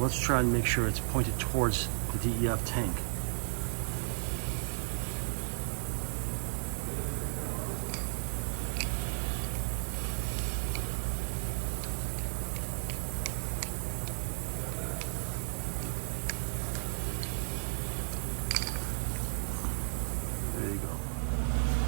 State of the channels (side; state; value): left; silent; digital silence